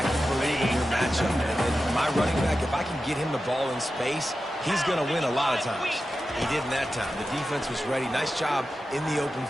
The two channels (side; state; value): both; normal; correlation 0.92